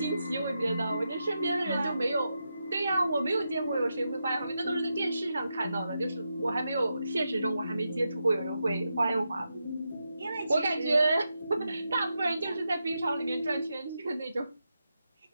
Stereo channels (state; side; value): inverted; both; correlation -0.87